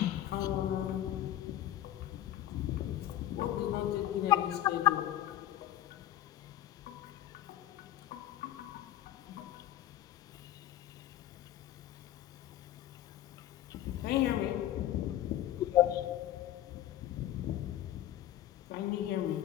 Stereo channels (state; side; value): quieter; right; 12.9 dB